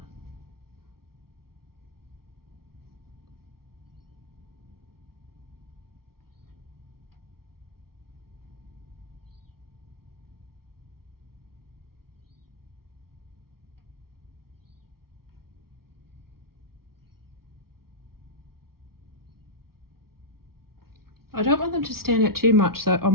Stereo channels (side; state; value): left; late; 0.94 ms